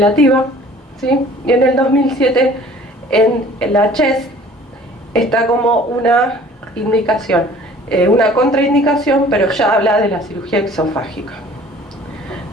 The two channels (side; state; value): both; normal; correlation 0.50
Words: ¿sí? Y en el 2007, en la CHEST, está como una indicación, una contraindicación, pero ya habla de la cirugía exofágica.